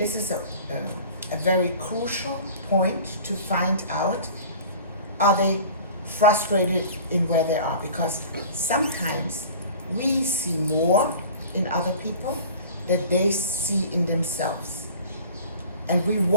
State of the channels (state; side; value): inverted; both; correlation -0.42